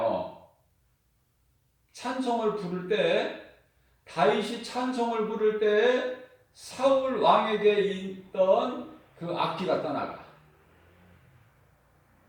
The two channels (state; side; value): identical; both; correlation 1.00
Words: 찬송을 부를 때 다윗이 찬송을 부를 때 사울 왕에게 있던 그 악기가 떠나가.